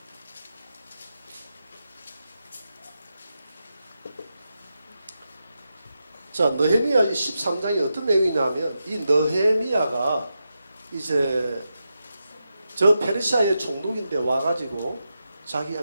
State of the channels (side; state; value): both; inverted; correlation -0.88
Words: 자, 느헤미야 13장이 어떤 내용이냐면 이 느헤미야가 이제 저 페르시아의 총독인데 와가지고 자기